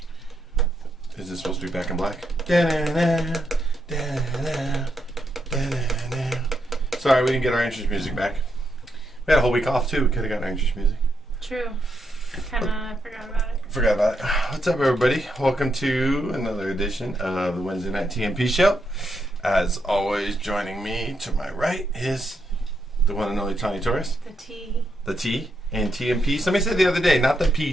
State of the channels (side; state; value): both; normal; correlation 0.80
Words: Is this supposed to be Back in Black? Da-na-na, da-na-na, da-na-na. Sorry, we didn't get our entrance music back. We had a whole week off too. We could have got our entrance music. True. I forgot about it. Forgot about it. What's up, everybody? Welcome to another edition of the Wednesday Night TMP Show. As always, joining me to my right is the one and only Tony Torres. The T. The T and TMP. Somebody said the other day, not the